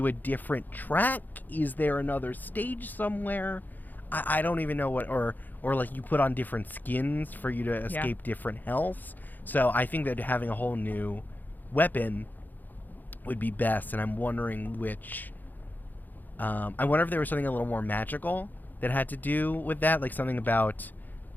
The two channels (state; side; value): late; right; 0.086 ms